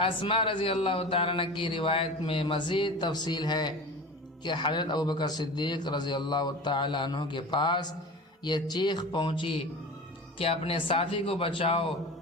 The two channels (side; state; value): both; normal; correlation 0.33